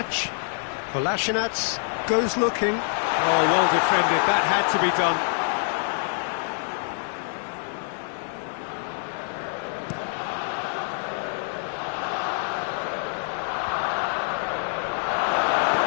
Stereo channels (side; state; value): right; silent; 57 dB below the other